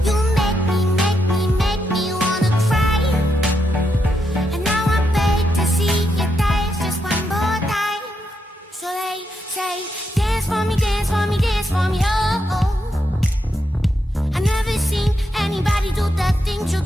You make me wanna cry. And now I beg to see you dance just one more time. So they say, dance for me, dance for me, dance for me, oh, oh. I never seen anybody do the things you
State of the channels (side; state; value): both; normal; correlation 0.82